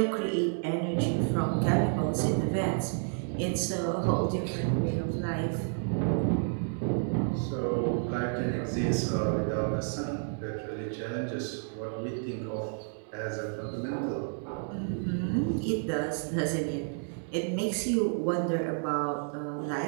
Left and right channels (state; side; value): silent; left; 57 dB below the other